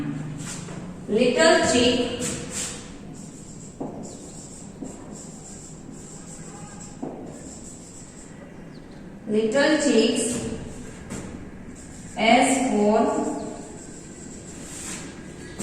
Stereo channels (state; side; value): identical; both; correlation 1.00